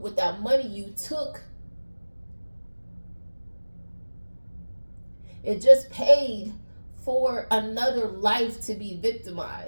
that money you took, it just paid for another life to be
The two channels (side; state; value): both; inverted; correlation -1.00